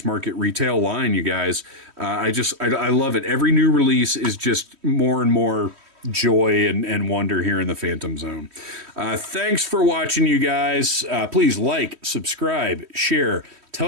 market retail line, you guys. I love it. Every new release is just more and more joy and wonder here in the Phantom Zone. Thanks for watching, you guys. Please like, subscribe, share,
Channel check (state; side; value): late; left; 3.1 ms